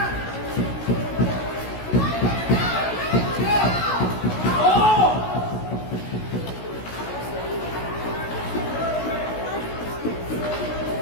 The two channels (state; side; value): late; right; 16 ms